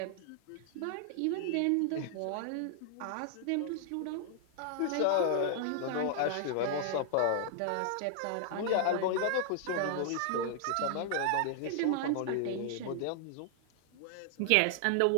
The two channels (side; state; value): both; different; correlation -0.01